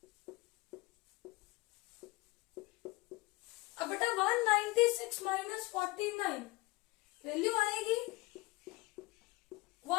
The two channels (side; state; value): right; quieter; 22.3 dB